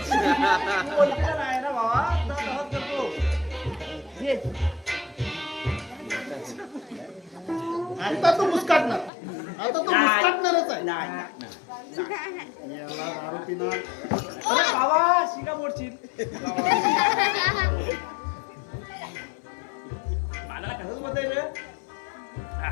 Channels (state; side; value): drops out; right; at 9.1 s